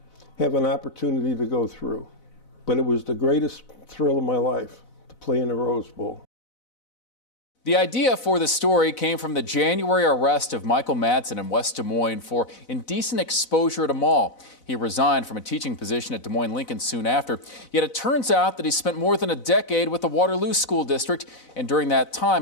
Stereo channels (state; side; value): late; right; 4.0 ms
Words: have an opportunity to go through. But it was the greatest thrill of my life to play in the Rose Bowl. The idea for the story came from the January arrest of Michael Madsen in West Des Moines for indecent exposure at a mall. He resigned from a teaching position at Des Moines Lincoln soon after. Yet it turns out that he spent more than a decade with the Waterloo School District, and during that time